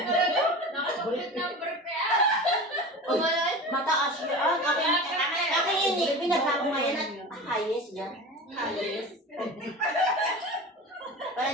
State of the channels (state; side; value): normal; both; correlation 0.32